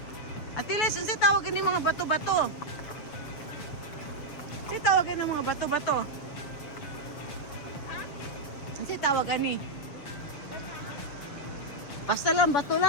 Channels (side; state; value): right; late; 7.0 ms